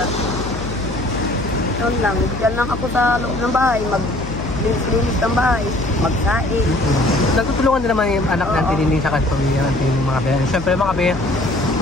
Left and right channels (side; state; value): left; noise; hum, 9 dB below the sound